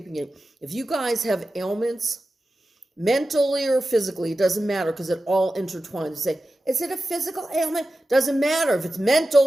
it. If you guys have ailments, mentally or physically, it doesn't matter because it all intertwines. You say, is it a physical ailment? Doesn't matter. If it's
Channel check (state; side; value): normal; both; correlation 0.93